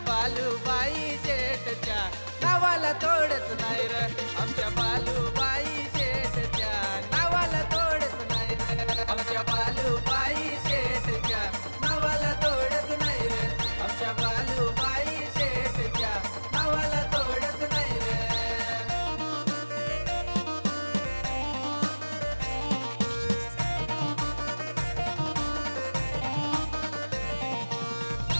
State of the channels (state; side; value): inverted; both; correlation -1.00